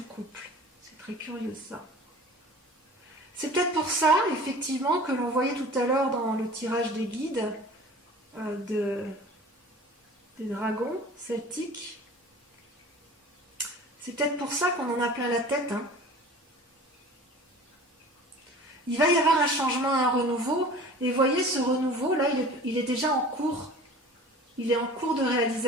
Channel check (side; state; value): both; normal; correlation 0.42